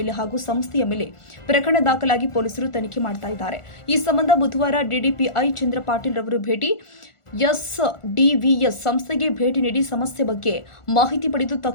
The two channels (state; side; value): late; right; 1.4 ms